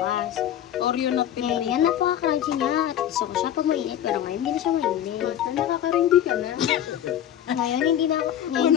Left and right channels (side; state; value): right; quieter; 10.8 dB